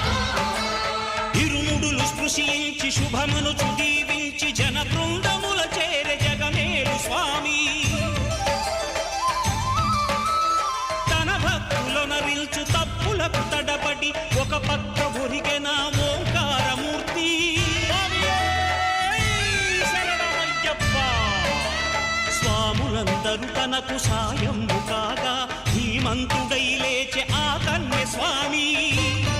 ఇరుముడులు స్పృశించి శుభమనుచు దీవించి జన బృందముల చేరే జగమేలు స్వామి తన భక్తులనరిల్చు తప్పులకు తడబడి ఒక పక్క ఒరిగెన ఓంకారమూర్తి స్వాములందరూ తనకు సాయము కాగా ధీమంతుడై లేచే ఆ కన్య స్వామి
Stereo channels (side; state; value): both; identical; correlation 1.00